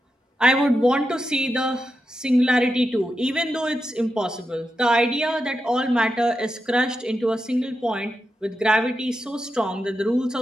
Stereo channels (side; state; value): both; normal; correlation 0.88